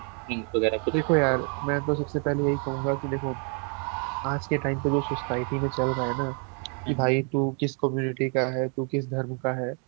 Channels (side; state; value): left; quieter; 38.5 dB